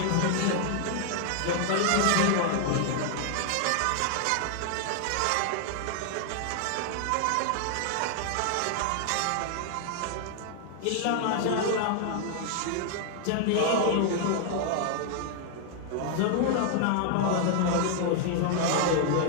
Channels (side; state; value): both; different; correlation 0.00